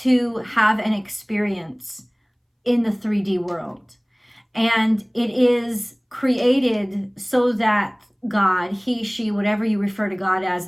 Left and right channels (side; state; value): both; identical; correlation 1.00